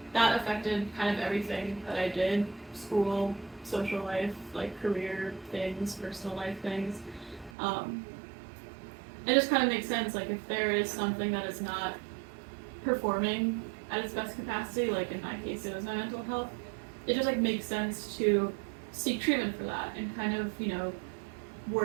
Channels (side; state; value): left; drops out; at 7.5 s